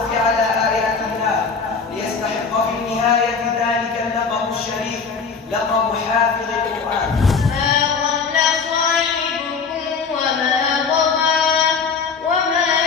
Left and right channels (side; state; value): right; quieter; 5.3 dB